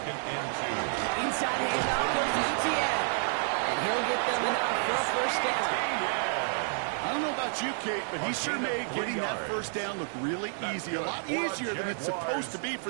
and 2. Inside handoff goes to ETN. And he'll get them enough for a first down. I don't know about you, Kate, but he sure made getting that first down look really easy. A lot easier than it's supposed to be for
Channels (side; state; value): left; silent; 58 dB below the other